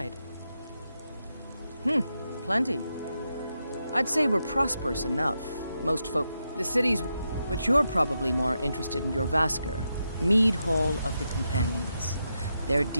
Plenty. I'd say we're prosperous enough. Most folk... The city's... But you're probably more interested in your Vasker, Mead Hall of the Companions. Their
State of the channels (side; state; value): both; inverted; correlation -0.85